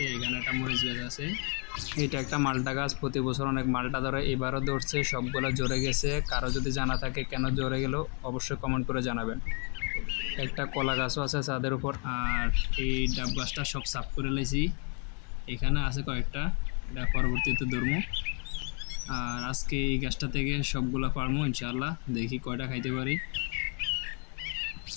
এখানে একটা মরিচ গাছ আছে, এটা একটা মালটা গাছ। প্রতি বছর অনেক মালটা ধরে, এবারও ধরছে, সবগুলো জ্বরে গেছে। কারো যদি জানা থাকে কেন জ্বরে গেল অবশ্যই কমেন্ট করে জানাবেন। একটা কলা গাছও আছে ছাদের উপর। আর এই ডাব গাছটা সব সাফ করে লাইছি, এখানে আছে কয়েকটা, এটা পরবর্তীতে ধরবো। আর আজকে এই গাছটা থেকে সবগুলো পারবো ইনশাআল্লাহ, দেখি কয়টা খাইতে পারি।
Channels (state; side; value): quieter; right; 35.9 dB